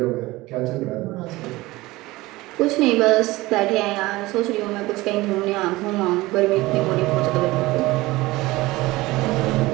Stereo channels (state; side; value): quieter; left; 19.8 dB